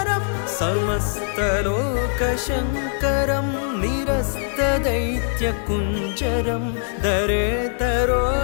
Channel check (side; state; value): right; silent; 61 dB below the other